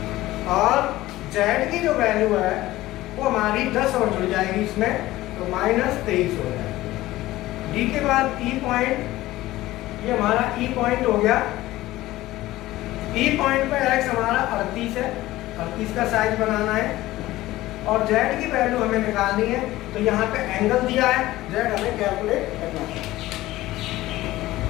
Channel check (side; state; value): right; quieter; 16.8 dB